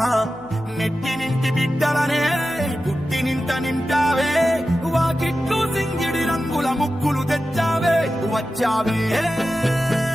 నెట్టి నింటి బిడ్డలనే పుట్టి నింట నింటావే వాకిట్లు సింగిడి రంగుల ముక్కులు తెచ్చావే వచ్చావే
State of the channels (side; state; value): left; noise; hum, 24 dB below the sound